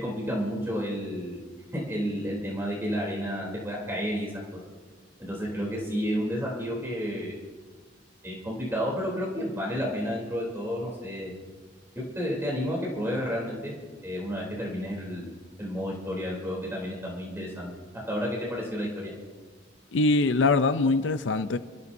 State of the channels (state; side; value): normal; both; correlation 0.49